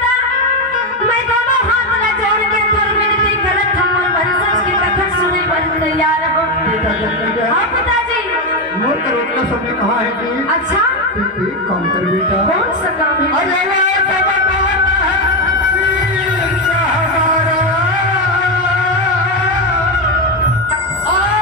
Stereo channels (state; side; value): normal; both; correlation 0.10